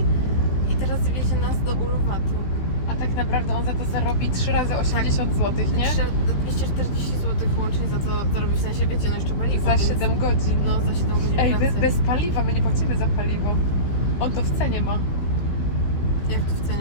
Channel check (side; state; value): right; late; 15 ms